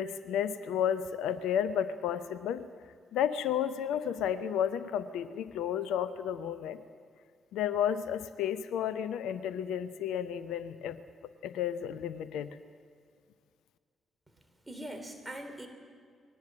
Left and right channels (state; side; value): quieter; right; 8.6 dB